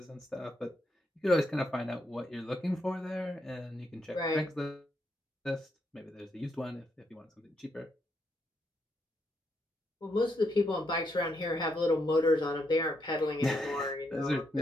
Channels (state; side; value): normal; both; correlation 0.79